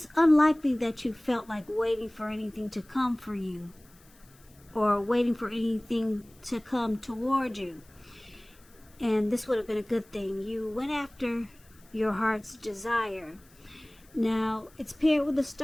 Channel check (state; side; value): noise; left; hiss, 28 dB below the sound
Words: unlikely that you felt like waiting for anything to come for you, or waiting for anything to come toward you. And this would have been a good thing. You went after your heart's desire. Now, it's paired with the